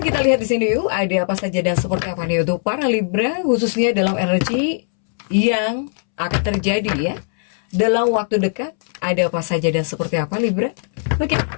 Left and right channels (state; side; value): silent; right; 66 dB below the other